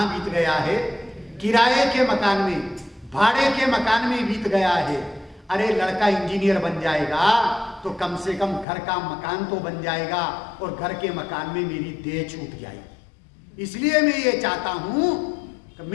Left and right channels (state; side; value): drops out; right; at 8.7 s